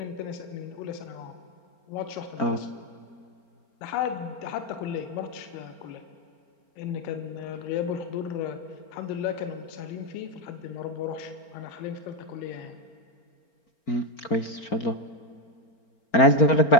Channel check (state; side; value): late; right; 4.4 ms